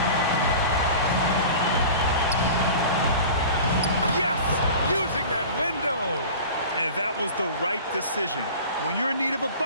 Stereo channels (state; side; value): inverted; both; correlation -0.38